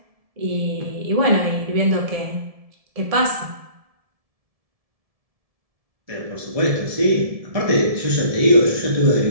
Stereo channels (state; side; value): late; left; 1.7 ms